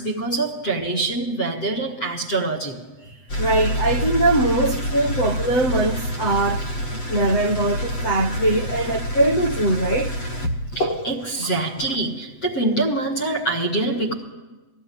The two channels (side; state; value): right; late; 8.0 ms